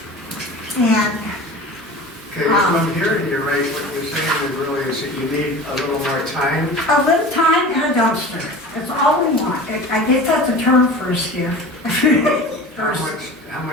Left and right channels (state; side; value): normal; both; correlation 0.37